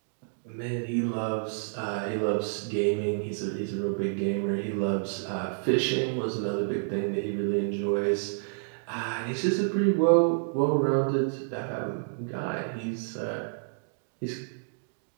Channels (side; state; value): left; silent; digital silence